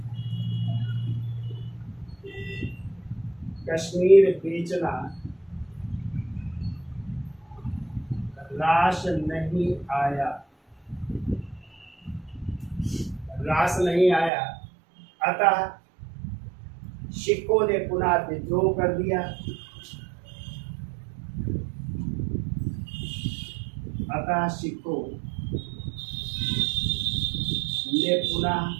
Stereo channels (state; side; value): drops out; left; at 14.3 s